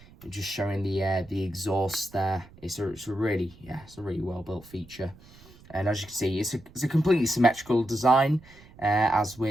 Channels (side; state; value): right; noise; rumble, 23 dB below the sound